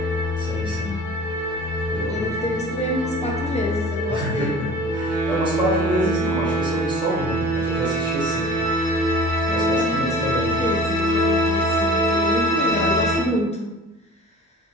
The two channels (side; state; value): both; normal; correlation 0.42